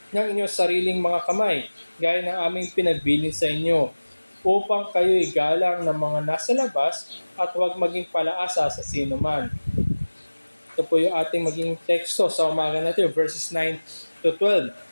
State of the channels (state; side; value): inverted; both; correlation -1.00